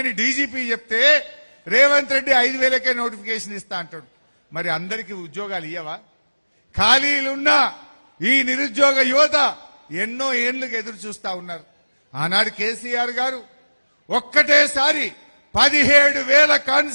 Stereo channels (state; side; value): inverted; both; correlation -1.00